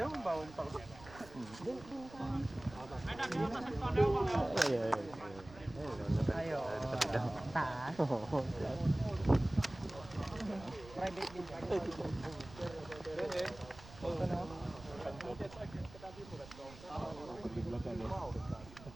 mabawon pa ko. Ayo. Taas. Private din.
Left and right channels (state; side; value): noise; right; rumble, 18 dB below the sound